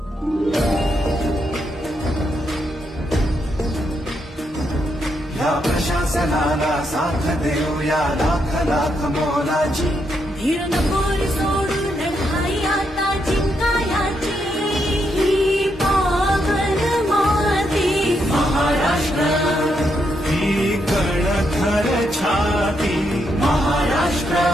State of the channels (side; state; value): both; normal; correlation 0.80